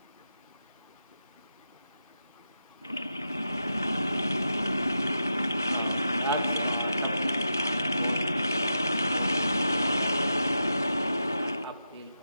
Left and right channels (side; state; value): both; inverted; correlation -0.87